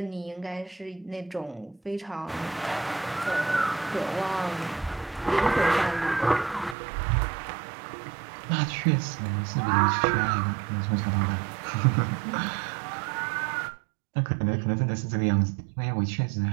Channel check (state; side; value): drops out; left; at 6.8 s